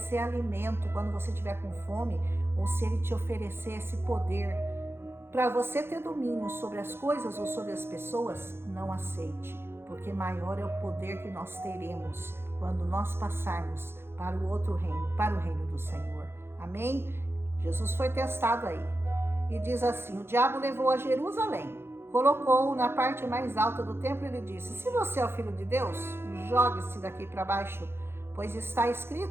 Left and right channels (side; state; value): left; late; 0.11 ms